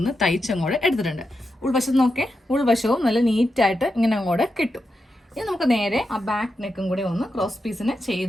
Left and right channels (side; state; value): both; normal; correlation 0.87